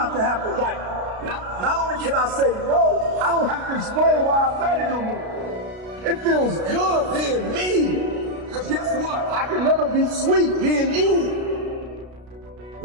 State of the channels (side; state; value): left; late; 33 ms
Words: to have to, like, not only can I say no, I don't have to explain why I said it no more. It feels good being me. Because guess what? I can never be sweet being you.